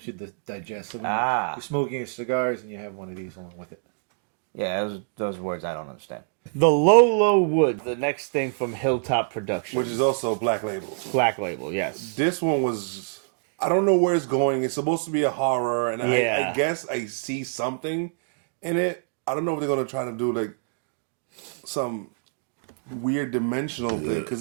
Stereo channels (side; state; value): left; silent; digital silence